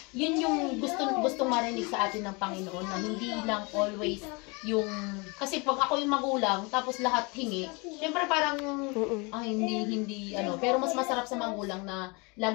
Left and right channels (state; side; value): quieter; right; 29.0 dB